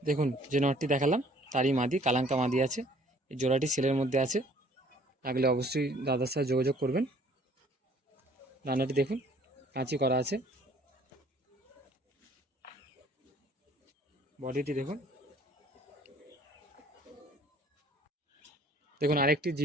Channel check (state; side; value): normal; both; correlation 0.56